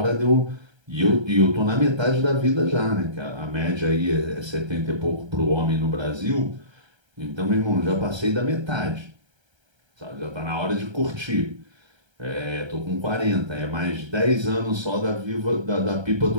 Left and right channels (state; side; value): late; left; 1.3 ms